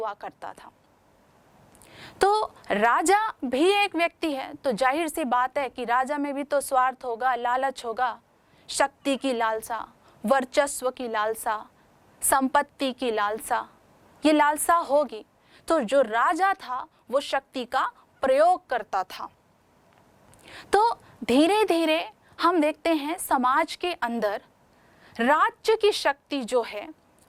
करता था। तो राजा भी एक व्यक्ति है, तो जाहिर सी बात है कि राजा में भी तो स्वार्थ होगा, लालच होगा, शक्ति की लालसा, वर्चस्व की लालसा, संपत्ति की लालसा, ये लालसा होगी। तो जो राजा था वो शक्ति का प्रयोग करता था। तो धीरे धीरे हम देखते हैं समाज के अंदर राज्य की शक्ति जो है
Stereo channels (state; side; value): identical; both; correlation 1.00